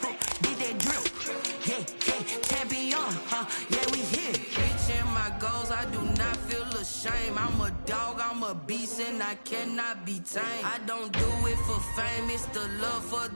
did that drip. Yeah, champion, yeah, we here. Reaching my goals, I do not feel ashamed. I'm a dog, I'm a beast, and I cannot be tamed. I don't do it for fame, it's the love for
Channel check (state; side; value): inverted; both; correlation -1.00